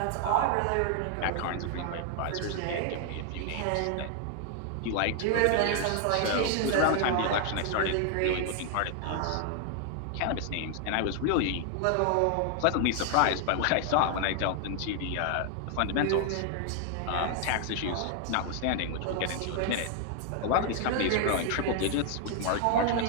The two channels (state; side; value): different; both; correlation 0.00